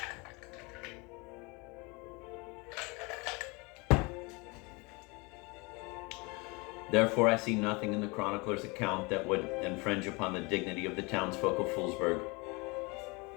Therefore, I see nothing in the chronicler's account that would infringe upon the dignity of the townsfolk of Foolsburg.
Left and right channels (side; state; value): right; quieter; 27.4 dB